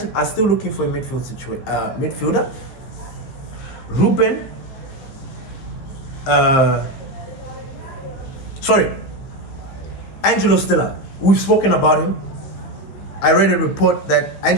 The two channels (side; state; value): right; late; 15 ms